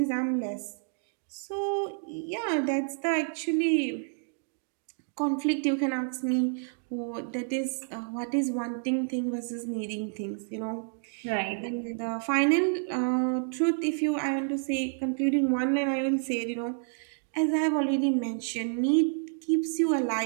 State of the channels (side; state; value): left; silent; 58 dB below the other